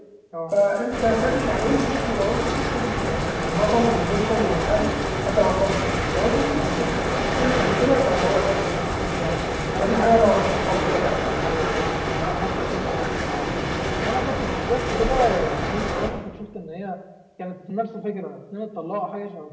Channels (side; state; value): both; identical; correlation 1.00